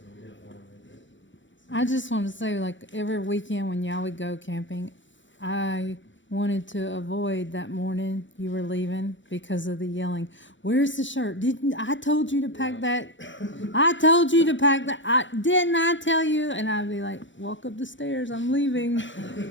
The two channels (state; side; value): late; right; 0.55 ms